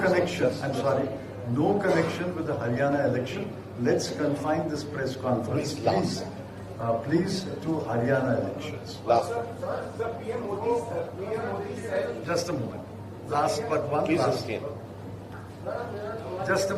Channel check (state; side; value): identical; both; correlation 1.00